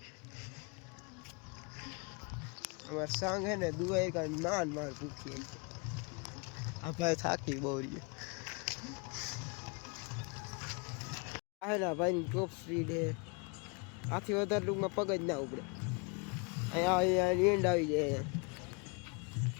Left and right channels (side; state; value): right; quieter; 31.9 dB